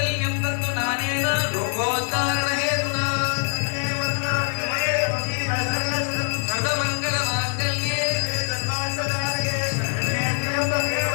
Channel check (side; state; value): right; silent; digital silence